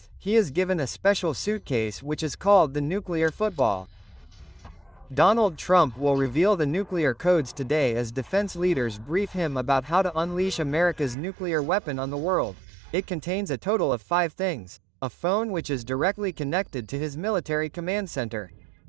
he is given a special suitcase which is called the nuclear football. Donald Trump will reveal the nuclear codes today as defense leaders brief him about how to unleash America's nuclear weapon on the world. It contains a total of 5 things. A phone which is directly connected to his military command center.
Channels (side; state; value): left; drops out; at 11.2 s